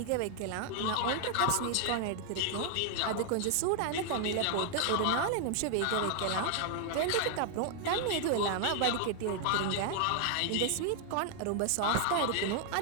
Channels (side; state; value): both; different; correlation 0.00